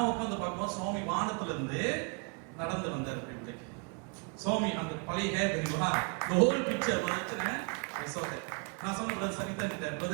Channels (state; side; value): quieter; left; 34.7 dB